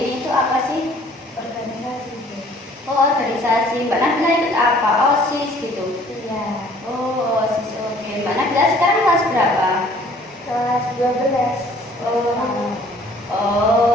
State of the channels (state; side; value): normal; both; correlation 0.56